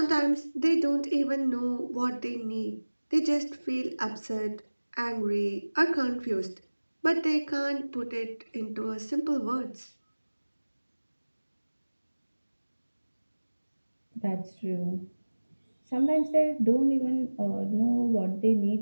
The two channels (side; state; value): both; inverted; correlation -1.00